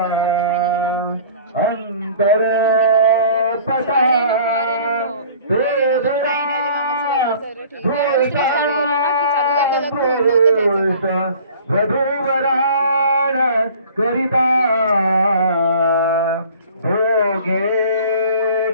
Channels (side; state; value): both; inverted; correlation -0.48